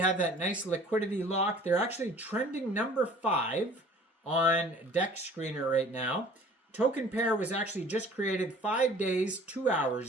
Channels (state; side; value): normal; both; correlation 0.50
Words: that nice liquidity lock. They're actually trending number 5 on DEX Screener right now. Token pair was actually just created 5 days, 2